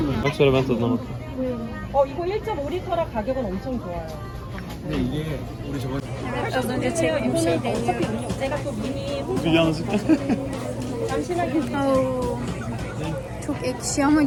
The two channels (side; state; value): both; identical; correlation 1.00